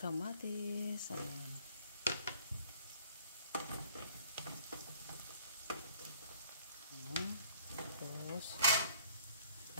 Ayan. Ayan. Tapos,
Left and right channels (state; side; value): inverted; both; correlation -0.55